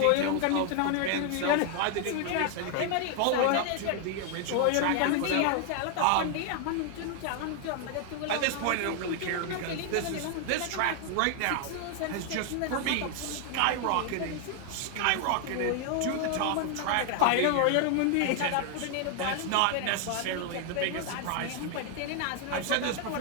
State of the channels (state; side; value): different; both; correlation 0.00